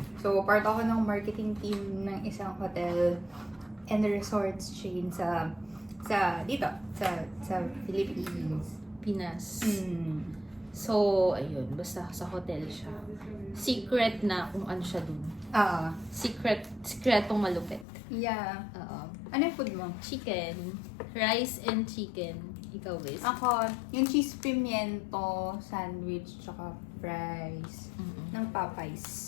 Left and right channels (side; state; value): right; drops out; at 17.9 s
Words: So, part ako ng marketing team ng isang hotel and resorts chain sa Philippines. Pinas. So, ayun, basta sa hotel siya. Secret na kung ano siya dun. Secretong malupit. Yeah. Oo. Ano yung food mo? Chicken. Rice and chicken. Ikaw, Bes. Ako, yung cheese pimiento, sandwich, tsaka fries ng Popeyes.